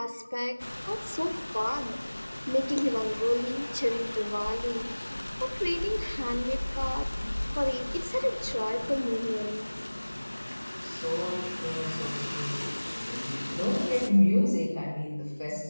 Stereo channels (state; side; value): inverted; both; correlation -1.00